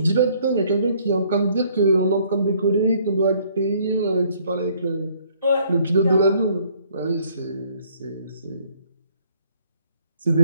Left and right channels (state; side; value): inverted; both; correlation -0.63